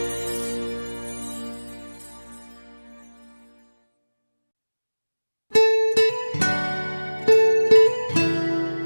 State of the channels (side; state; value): both; inverted; correlation -1.00